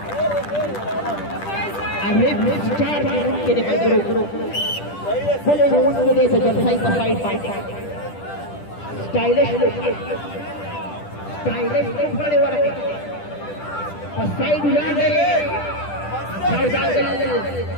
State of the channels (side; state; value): right; late; 10 ms